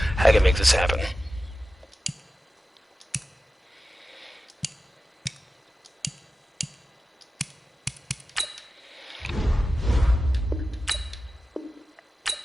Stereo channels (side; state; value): both; normal; correlation 0.94